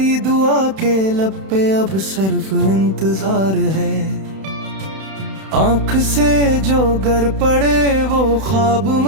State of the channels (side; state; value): left; late; 31 ms